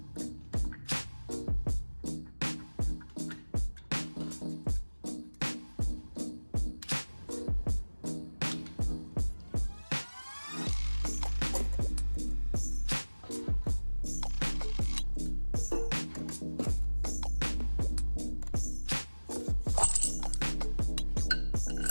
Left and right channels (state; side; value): inverted; both; correlation -1.00